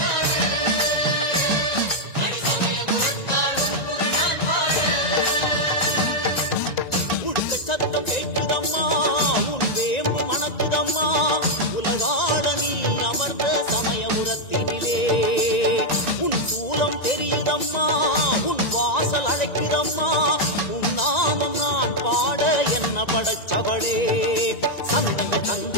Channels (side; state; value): right; late; 1.9 ms